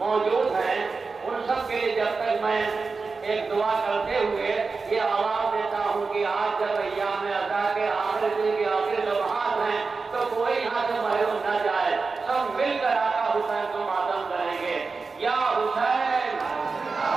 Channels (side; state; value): left; quieter; 4.4 dB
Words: हैं उन सब के लिए जब तक मैं एक दुआ करते हुए ये आवाज देता हूँ कि आज जब अय्याम अज़ा के आखिर दिन के आखिर लम्हात हैं तो कोई यहाँ से महरूम न जाए, सब मिलकर आका हुसैन को मातम करेंगे। या हुसैन,